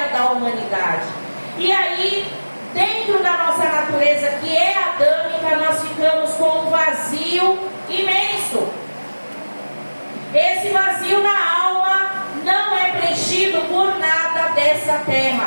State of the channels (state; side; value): inverted; both; correlation -1.00